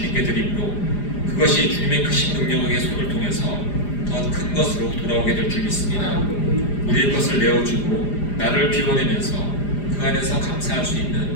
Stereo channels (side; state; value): right; late; 4.9 ms